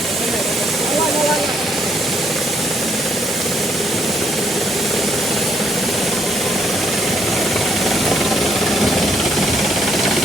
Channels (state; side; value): normal; both; correlation 0.72